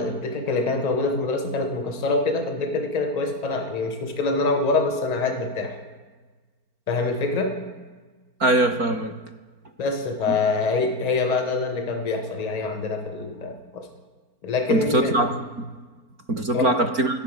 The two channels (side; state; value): left; late; 4.4 ms